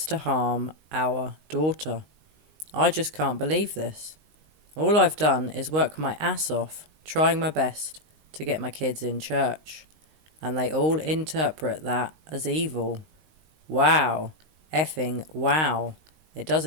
to harm our daughter? I just can't believe this. All I've done is work my ass off, trying my best to get my kids in church, and they all interpret that as evil. Wow. Effing wow. It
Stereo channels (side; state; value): left; late; 19 ms